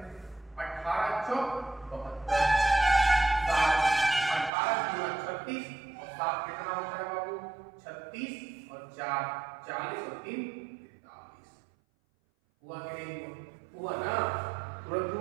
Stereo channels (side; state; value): left; drops out; at 4.5 s